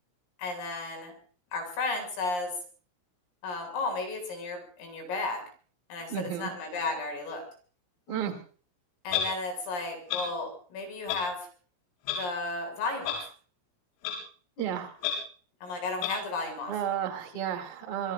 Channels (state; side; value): late; right; 17 ms